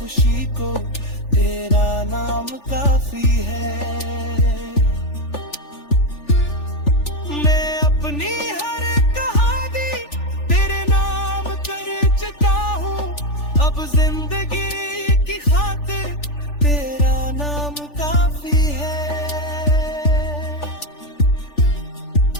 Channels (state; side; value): late; right; 3.4 ms